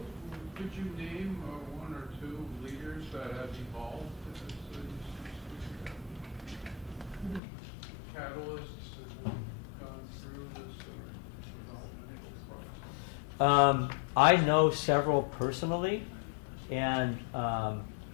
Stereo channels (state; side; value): drops out; right; at 7.4 s